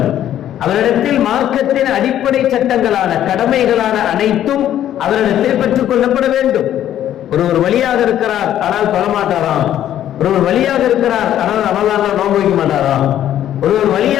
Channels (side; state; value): right; quieter; 11.5 dB